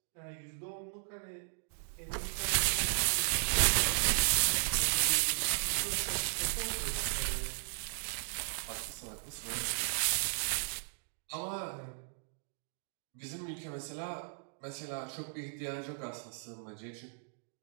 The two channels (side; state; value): left; silent; digital silence